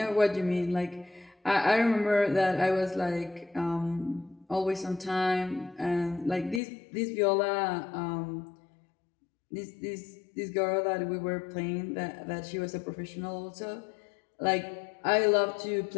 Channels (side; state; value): right; drops out; at 6.6 s